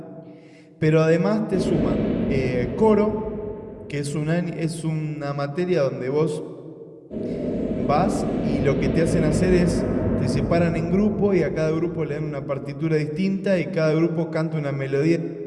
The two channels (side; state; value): both; identical; correlation 1.00